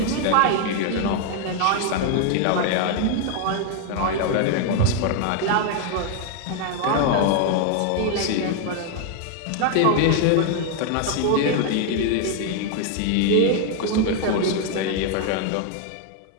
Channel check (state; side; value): different; both; correlation 0.00